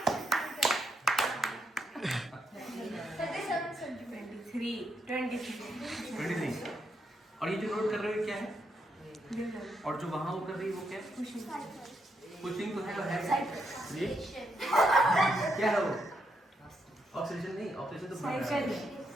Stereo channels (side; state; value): both; normal; correlation 0.79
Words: 23 और ये जो नोट कर रहे हो क्या है और जो वहां वो कर रही है वो क्या है पुशिंग तो है तो है ये क्या है वो ऑक्सीजन नहीं ऑक्सीजन तो